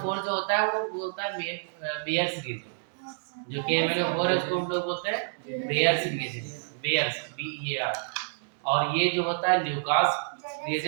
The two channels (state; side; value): silent; left; digital silence